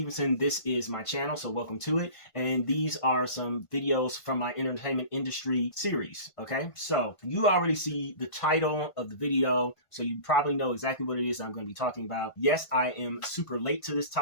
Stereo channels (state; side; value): late; right; 1.5 ms